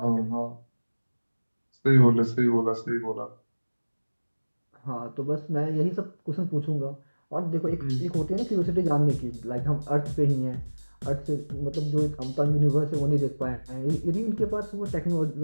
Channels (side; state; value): both; inverted; correlation -1.00